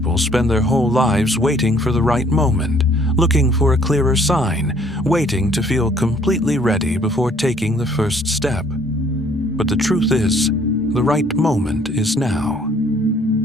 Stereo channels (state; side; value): normal; both; correlation 0.61